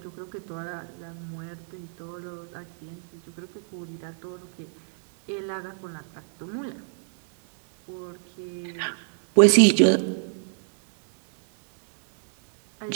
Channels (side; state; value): left; silent; digital silence